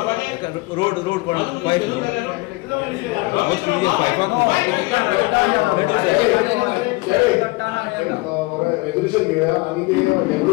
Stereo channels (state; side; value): quieter; right; 23.2 dB